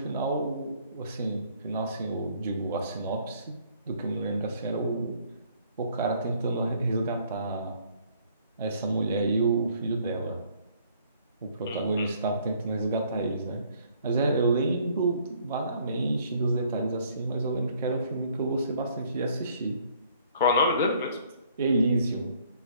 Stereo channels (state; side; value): inverted; both; correlation -0.62